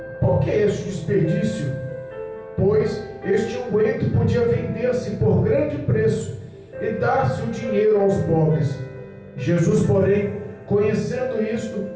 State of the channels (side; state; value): both; identical; correlation 1.00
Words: Por que este desperdício? Pois este unguento podia vender-se por grande preço e dar-se o dinheiro aos pobres. Jesus, porém, conhecendo isto,